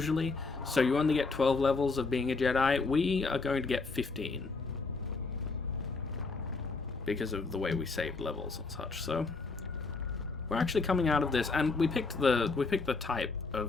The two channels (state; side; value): quieter; right; 4.0 dB